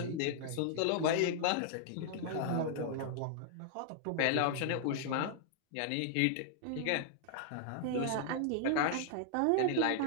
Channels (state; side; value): different; both; correlation -0.01